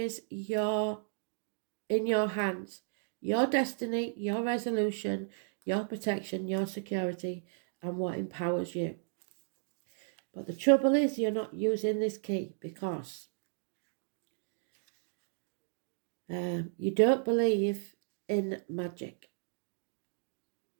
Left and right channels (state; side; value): silent; left; digital silence